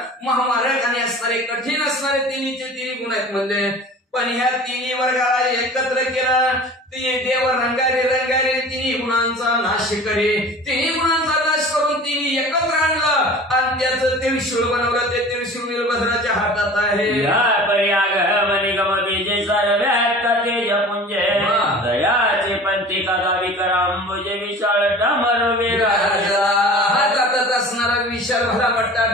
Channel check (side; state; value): both; normal; correlation 0.41